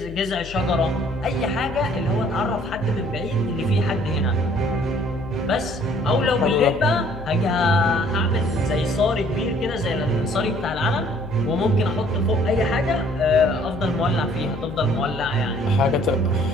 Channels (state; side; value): noise; left; hum, 14 dB below the sound